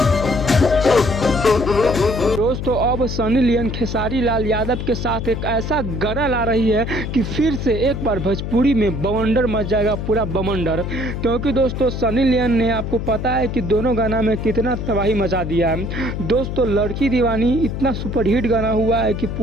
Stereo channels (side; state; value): left; noise; hum, 4 dB below the sound